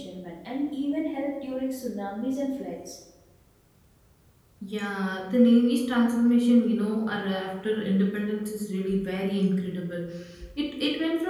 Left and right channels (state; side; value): identical; both; correlation 1.00